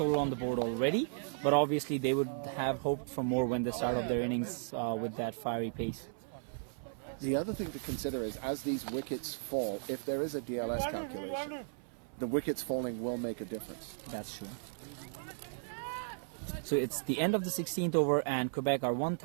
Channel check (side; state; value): left; silent; 54 dB below the other